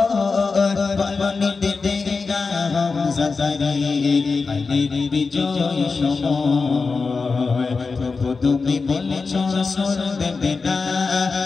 বলনি দেবে না হামজাদারি আলীর বিজয় সময়। প্রভু তুমি বলেছ রাসূল দেবে না,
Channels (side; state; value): right; quieter; 4.5 dB